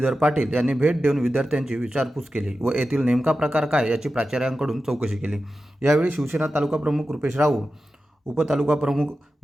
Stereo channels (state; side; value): normal; both; correlation 0.92